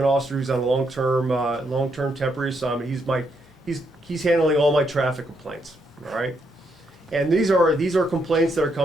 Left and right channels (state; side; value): normal; both; correlation 0.77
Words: officer who's on a long-term temporary assignment. He's handling all my traffic complaints. All right, and these are complaints that are